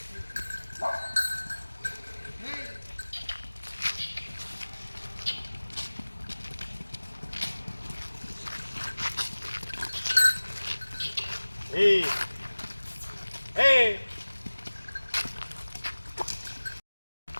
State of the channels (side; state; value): both; inverted; correlation -1.00